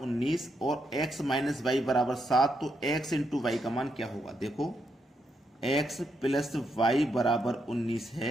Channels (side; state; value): both; normal; correlation 0.80